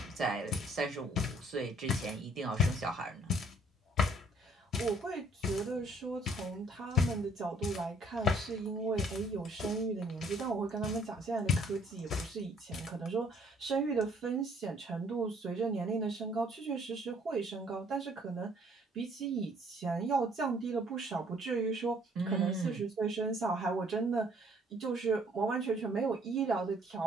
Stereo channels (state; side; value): normal; both; correlation 0.61